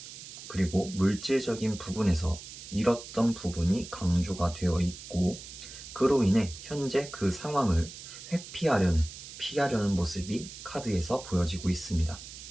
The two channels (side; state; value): right; noise; hiss, 13 dB below the sound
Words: 그리고 물질적인 부분에서 잃었던 부분이 강조가 되어 있고, 그로 인해 현재 그 상황을 피하려는 모습이 카드에서 보여지고 있습니다.